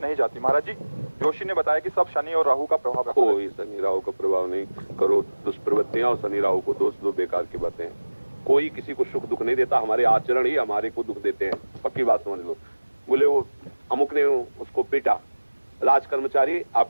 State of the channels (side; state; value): both; inverted; correlation -1.00